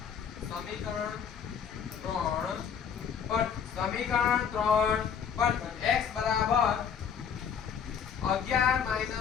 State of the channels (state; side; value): quieter; right; 7.5 dB